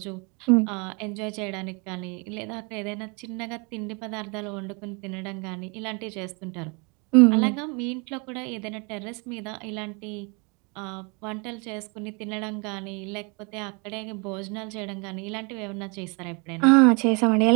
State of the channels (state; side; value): quieter; left; 31.8 dB